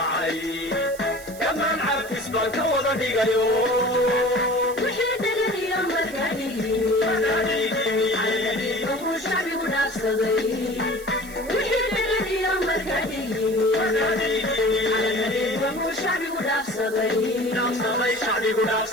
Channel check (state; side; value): noise; right; hiss, 17 dB below the sound